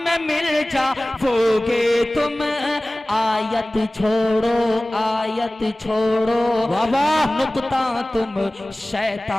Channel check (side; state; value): both; normal; correlation 0.98